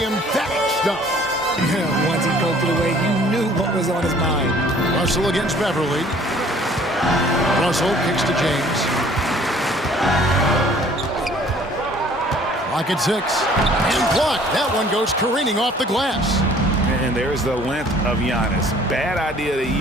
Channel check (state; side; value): normal; both; correlation 0.55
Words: emphatic stuff. Yeah, once he poked it away, you knew what was on his mind. Russell against Beverly. Russell kicks to James. Lock at 6. And blocked. That one goes careening off the glass. And there's the length of Giannis. Bad idea to